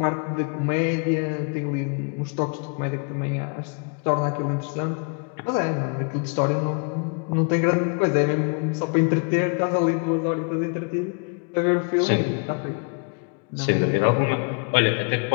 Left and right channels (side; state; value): right; quieter; 36.9 dB